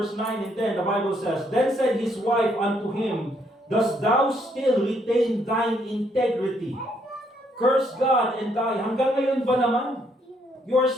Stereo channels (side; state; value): both; normal; correlation 0.71